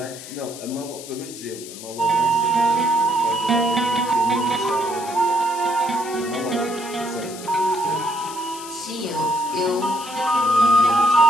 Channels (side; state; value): left; noise; hiss, 14 dB below the sound